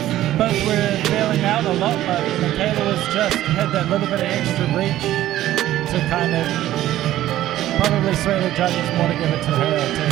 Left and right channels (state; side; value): quieter; left; 13.9 dB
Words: were bailing out a lot, but Michaela had that little bit of extra reach to kind of probably sway the judges more to give it to her